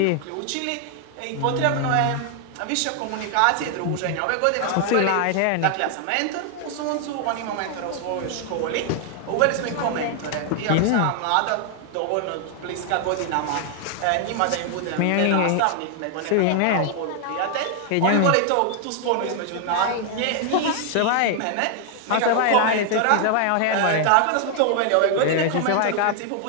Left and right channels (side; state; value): both; different; correlation 0.00